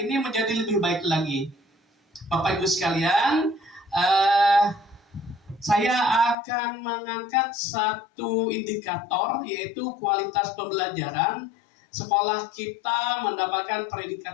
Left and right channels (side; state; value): right; drops out; at 6.4 s